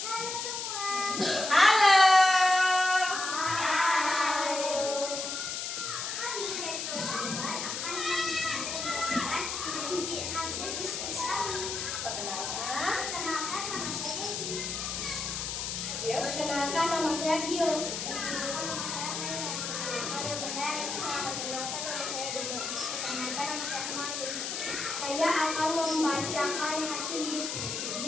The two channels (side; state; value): left; noise; hiss, 4 dB below the sound